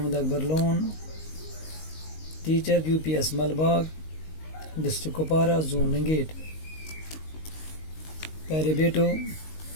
Akbar Lone, teacher U P S Malbagh, district Kupwara, zone Langate. پیارے بیٹو،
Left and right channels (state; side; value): late; right; 19 ms